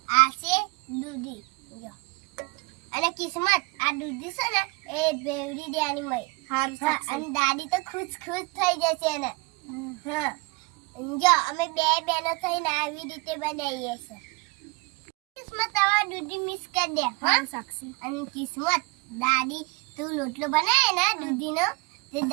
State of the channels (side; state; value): left; quieter; 27.4 dB